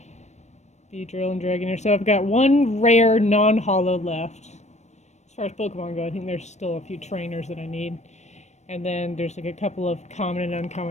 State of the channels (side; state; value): right; late; 0.33 ms